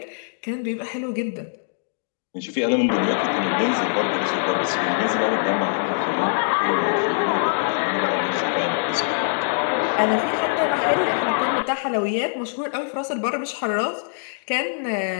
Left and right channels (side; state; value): right; silent; digital silence